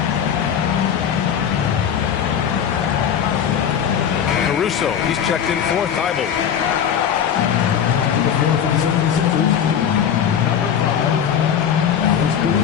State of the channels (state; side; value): quieter; right; 8.5 dB